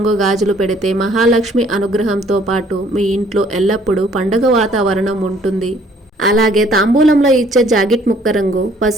గాజులు పెడితే మహాలక్ష్మి అనుగ్రహంతో పాటు మీ ఇంట్లో ఎల్లప్పుడూ పండగ వాతావరణం ఉంటుంది. అలాగే తాంబూలంలో ఇచ్చే జాకెట్ ముక్క రంగు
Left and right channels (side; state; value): both; normal; correlation 0.60